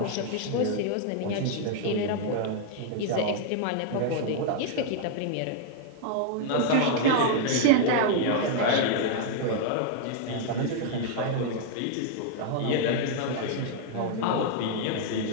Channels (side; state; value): both; different; correlation 0.00